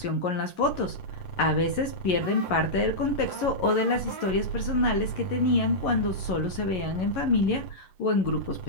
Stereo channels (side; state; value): right; late; 11 ms